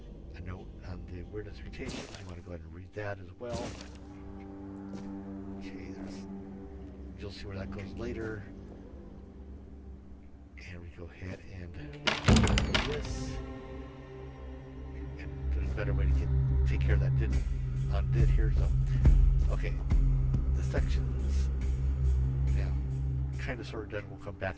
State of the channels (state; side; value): identical; both; correlation 1.00